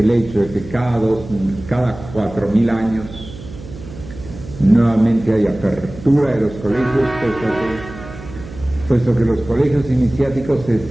hecho de que cada 4.000 años nuevamente hay apertura de los colegios, puesto que los colegios iniciáticos se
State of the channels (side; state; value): right; noise; hum, 15 dB below the sound